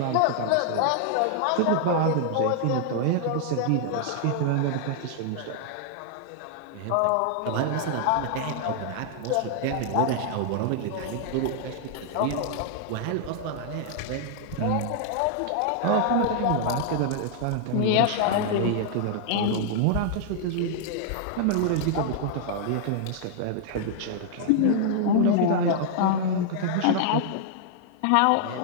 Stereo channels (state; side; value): different; both; correlation -0.01